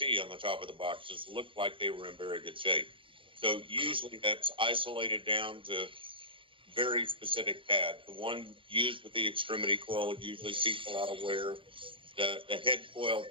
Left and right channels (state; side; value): late; left; 0.25 ms